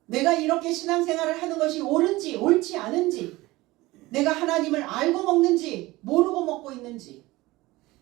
내가 이렇게 신앙생활을 하는 것이 옳은지, 옳지 않은지, 내가 하나님을 알고 먹는지, 모르고 먹고 있는지,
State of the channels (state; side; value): quieter; left; 19.7 dB